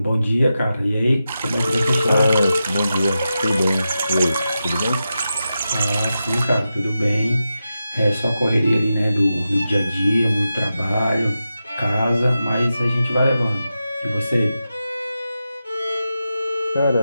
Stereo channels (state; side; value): inverted; both; correlation -0.90